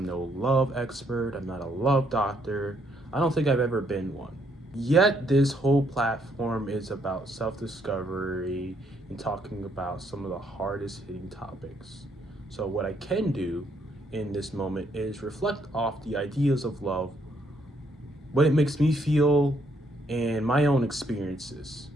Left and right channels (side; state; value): both; normal; correlation 0.71